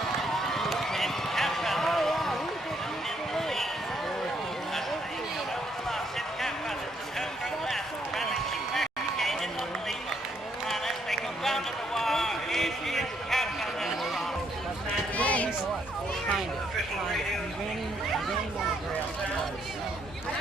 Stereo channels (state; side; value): normal; both; correlation 0.72